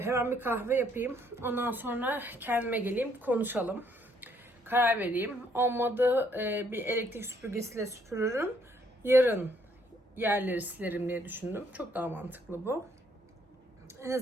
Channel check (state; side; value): normal; both; correlation 0.68